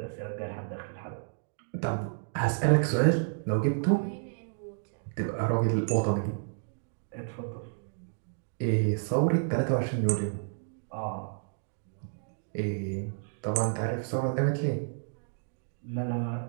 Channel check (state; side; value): silent; left; digital silence